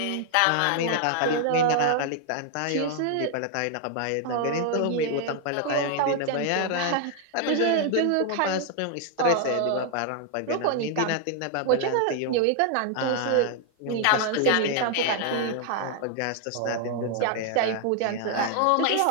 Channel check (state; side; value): different; both; correlation 0.00